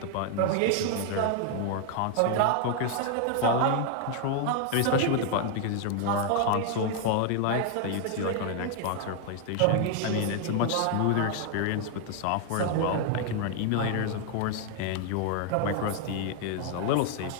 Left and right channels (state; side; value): different; both; correlation 0.00